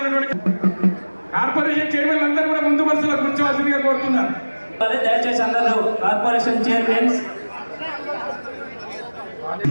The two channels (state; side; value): inverted; both; correlation -1.00